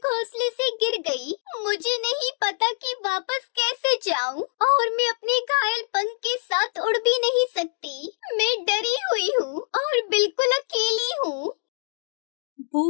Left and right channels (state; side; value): silent; right; digital silence